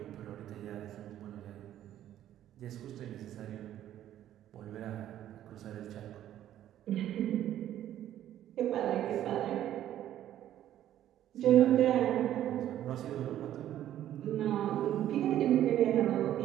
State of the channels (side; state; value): left; quieter; 11.9 dB